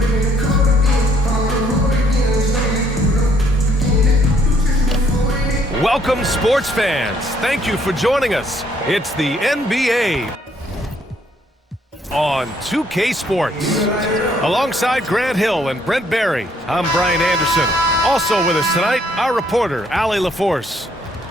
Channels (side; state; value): both; normal; correlation 0.67